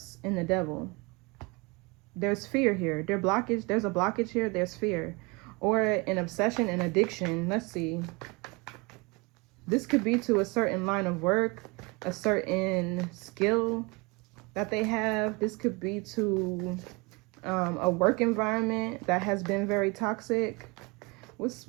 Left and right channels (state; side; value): quieter; left; 27.9 dB